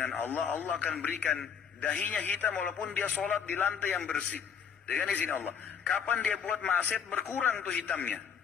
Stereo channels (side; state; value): right; quieter; 7.2 dB